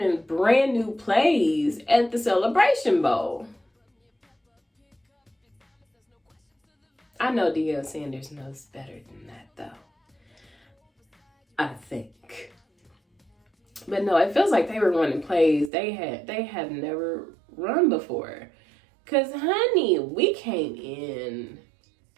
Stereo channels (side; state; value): left; drops out; at 15.7 s